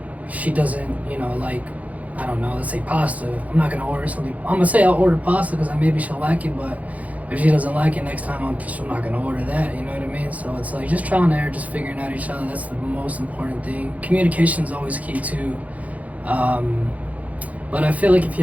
she doesn't, like, I don't know, let's say pasta. I'm not gonna order something. I'm gonna say I'll order pasta because maybe she'll like it, but if she doesn't like it next time, I'm not gonna order that. You know what I mean? So it's like just trial and error, just figuring out each other. That's the most important thing. Communication is always key too. But I feel like if you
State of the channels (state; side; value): late; left; 0.071 ms